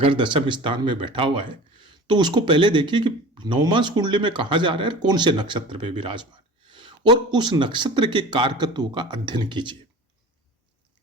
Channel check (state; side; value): normal; both; correlation 0.38